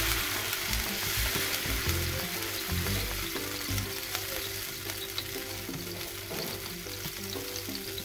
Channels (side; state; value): both; identical; correlation 1.00